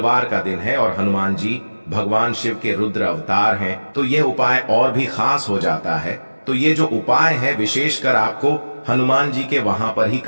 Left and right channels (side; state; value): both; inverted; correlation -1.00